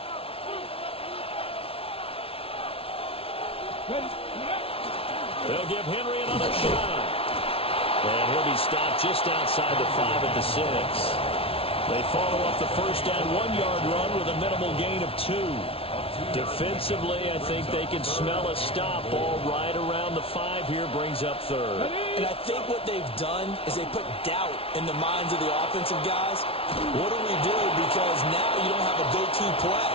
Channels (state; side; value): late; right; 0.27 ms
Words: They'll give Henry another shot. And he'll be stopped just outside the 5 at the 6. They follow up the first down 1-yard run with a minimal gain of 2. Defensively, I think they can smell a stop. Ball right around the 5 here, brings up 3rd. And I think what they've done is they put doubt in the minds of the offensive guys. What do we do? Because now you don't have a go-to play.